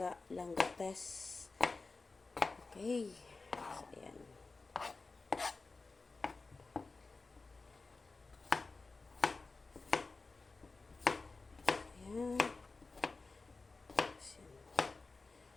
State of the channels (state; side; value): quieter; right; 3.8 dB